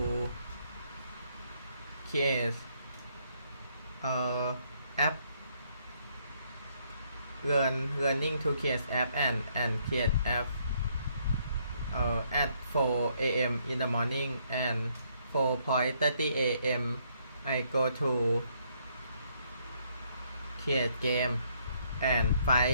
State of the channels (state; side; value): inverted; both; correlation -0.70